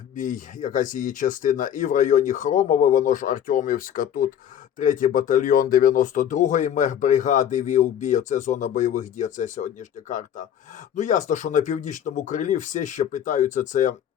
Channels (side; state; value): right; quieter; 9.7 dB